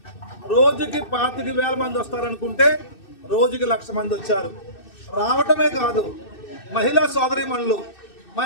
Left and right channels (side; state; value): right; late; 2.6 ms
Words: రోజుకి 25,000 మంది వస్తారనుకుంటే రోజుకి 1,00,000 మంది వచ్చారు. రావటమే కాదు, మహిళా సోదరీమణులు